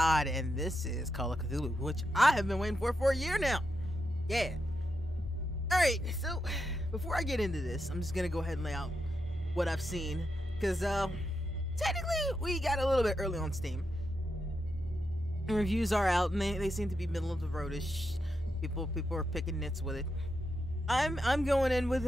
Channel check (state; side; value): normal; both; correlation 0.85